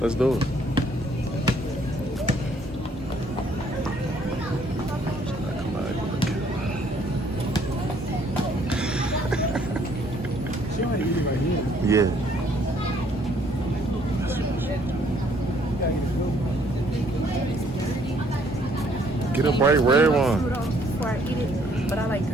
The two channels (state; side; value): normal; both; correlation 0.64